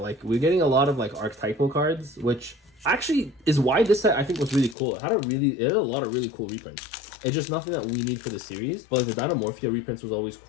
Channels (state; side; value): drops out; right; at 4.8 s